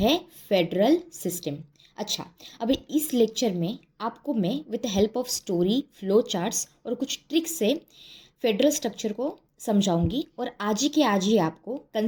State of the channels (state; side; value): identical; both; correlation 1.00